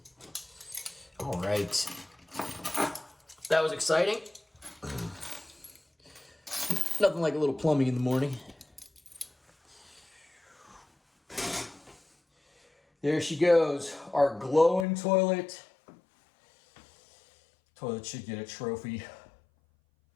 All right. That was exciting. Nothing like a little plumbing in the morning. There she goes, our glowing toilet. Toilet should get a trophy.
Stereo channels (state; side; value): drops out; right; at 14.9 s